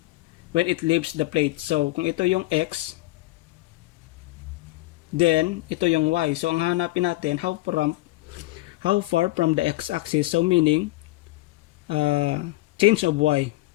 when it leaves the plate? So, kung ito yung x, then, ito yung y. So, ang hanapin natin, how far from the x-axis, so meaning change of y.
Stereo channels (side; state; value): right; quieter; 18.9 dB